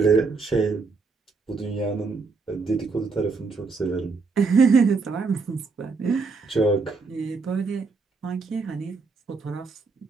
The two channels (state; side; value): quieter; left; 4.4 dB